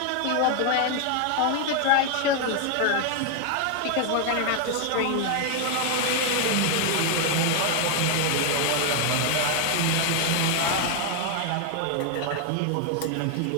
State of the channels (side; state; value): both; different; correlation 0.01